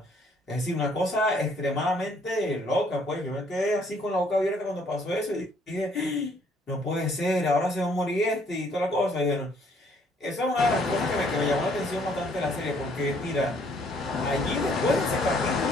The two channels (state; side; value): normal; both; correlation 0.64